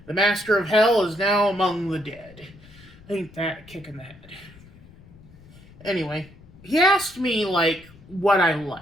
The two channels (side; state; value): left; noise; rumble, 23 dB below the sound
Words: The Master of Hell is now among the dead. Ain't that a kick in the head? Anyway, he asked me, what I